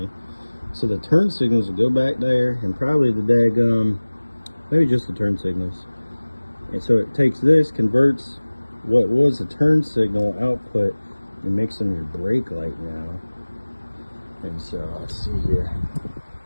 So the turn signals would go back there, and probably the daggum, maybe just the turn signals. And so it takes this, converts what was a turn signal output, and makes them your brake light now. And so let's see here.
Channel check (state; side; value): inverted; both; correlation -1.00